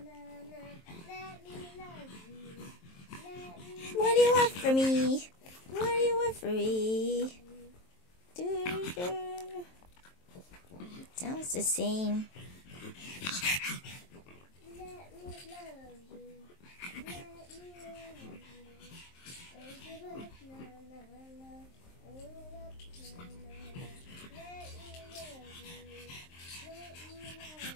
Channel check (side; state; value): right; late; 23 ms